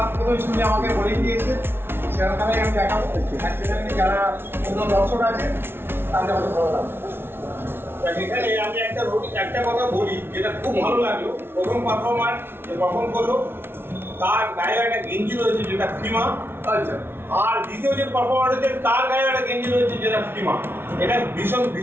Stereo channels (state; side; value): late; left; 0.11 ms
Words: প্রথমে শুনে আমাকে বলে দিয়েছে সেরকম খেলায় আমি দেখাবো অ্যাকচুয়ালি যারা অন্য দর্শক আছে তাদের আমাকে ভালো লাগবে এখানে আমি একটা কথা বলি যেটা খুব ভালো লাগলো প্রথম পারফর্মার যে পারফর্ম করলো তার গায়ে একটা গেঞ্জি রয়েছে যেটা ফিমা আচ্ছা আর দ্বিতীয় যে পারফর্মার হচ্ছে তার গায়ে একটা গেঞ্জি রয়েছে যেটা ফিমা এটা ভীষণ